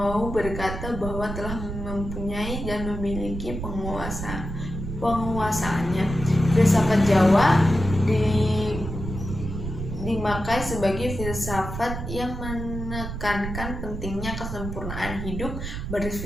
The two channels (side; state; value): right; noise; rumble, 6 dB below the sound